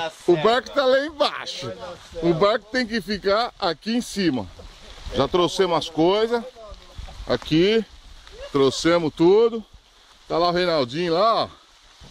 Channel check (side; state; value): both; identical; correlation 1.00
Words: barco tá lá embaixo. O barco tem que ficar aqui em cima. Já trouxemos as coisas. Aqui. Trouxemos tudo. Tá lá o Reinaldinho lá, ó.